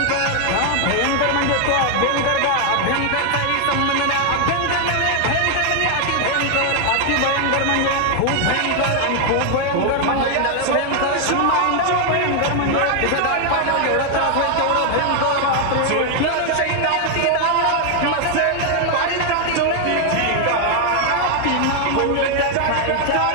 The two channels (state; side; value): different; both; correlation 0.00